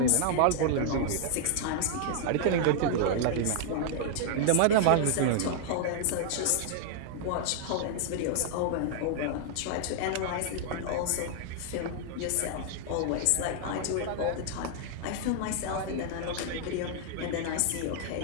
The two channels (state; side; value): different; both; correlation -0.01